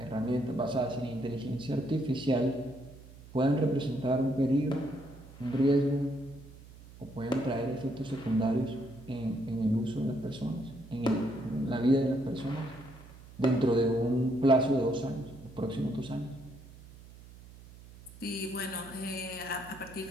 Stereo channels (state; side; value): noise; right; hum, 19 dB below the sound